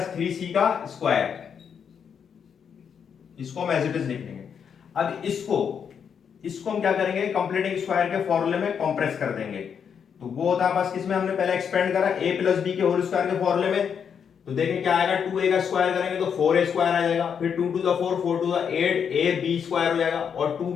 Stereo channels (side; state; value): right; quieter; 7.3 dB